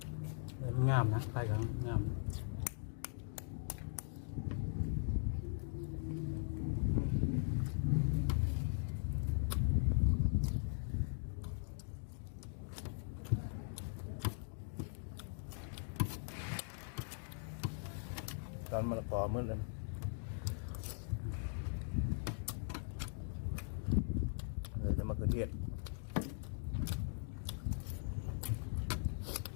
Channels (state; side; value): silent; right; digital silence